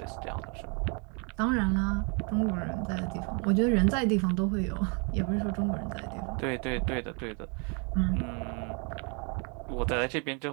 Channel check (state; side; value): quieter; left; 35.7 dB